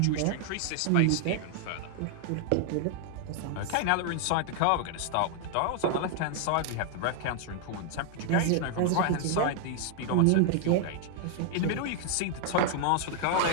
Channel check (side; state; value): both; different; correlation 0.00